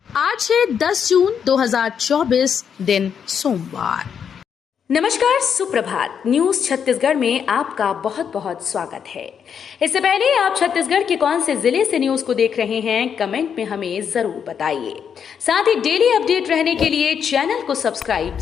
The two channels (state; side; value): quieter; right; 7.5 dB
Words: आज है 10 जून 2024 दिन सोमवार। नमस्कार, सुप्रभात। न्यूज छत्तीसगढ़ में आपका बहुत बहुत स्वागत है। इससे पहले आप छत्तीसगढ़ के कौन से जिले से न्यूज को देख रहे हैं, कमेंट में हमें जरूर बताइए। साथ ही डेली अपडेट रहने के लिए चैनल को सब्सक्राइब